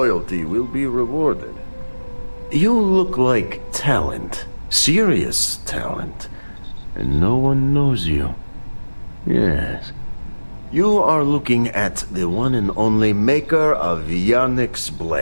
will be rewarded. You look like talent. Serious talent. And no one knows you. Yes. You are looking at the one and only maker of Yannick's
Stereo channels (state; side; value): inverted; both; correlation -1.00